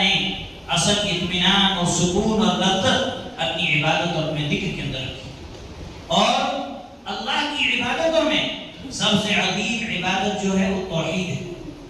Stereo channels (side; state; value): both; identical; correlation 1.00